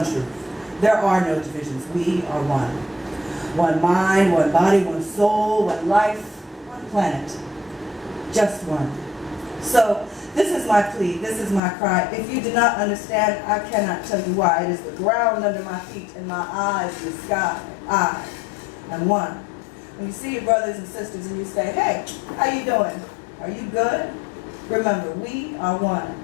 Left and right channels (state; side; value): drops out; right; at 11.6 s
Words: truth. There are no divisions. We are one. One mind, one body, one soul, one life, one planet. Just one. So, this is my plea, this is my cry. If you do not understand, I cannot tell you why. It is the ground under my feet and my eyes in the sky. I am one. When you see your brothers and sisters and you say, hey, how you doing? Are you good? Remember, we are one.